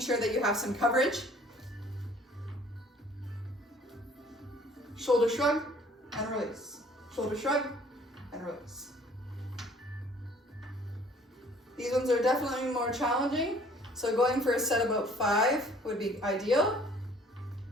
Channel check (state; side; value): normal; both; correlation 0.55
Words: that you have some coverage. Shoulder shrug and release. Shoulder shrug and release. These ones are definitely more challenging, so going for a set about 5 would be ideal.